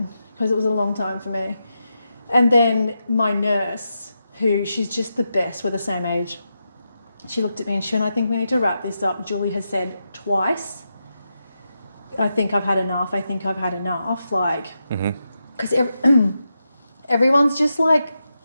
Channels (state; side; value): inverted; both; correlation -0.87